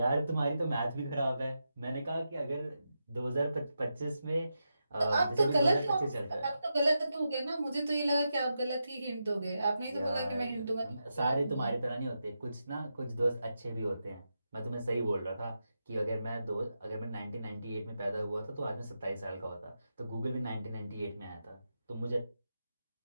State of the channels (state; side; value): inverted; both; correlation -0.88